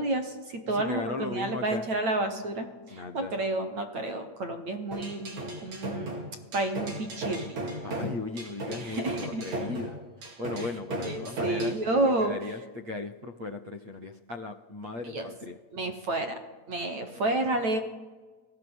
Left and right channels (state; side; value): late; left; 8.9 ms